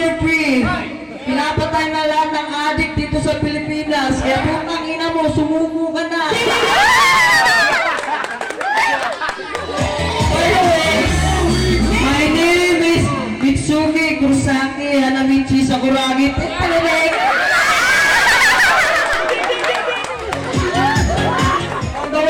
3. Pinapatay na lahat ng addict dito sa Pilipinas. Kaya putangina mo, sumuko ka na. Anyways, my name is Mitsuki Kurosaki Hanamichi Sakuragi. On the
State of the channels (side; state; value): both; identical; correlation 1.00